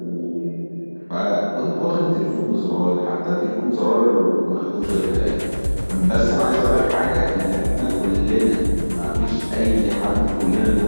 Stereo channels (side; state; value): both; inverted; correlation -1.00